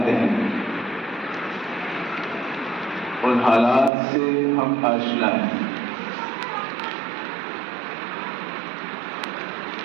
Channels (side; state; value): left; drops out; at 3.9 s